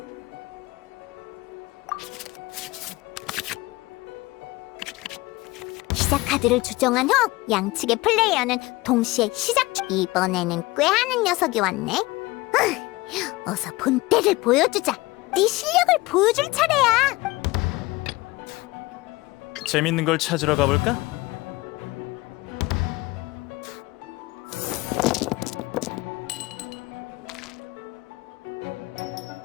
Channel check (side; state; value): right; quieter; 21.1 dB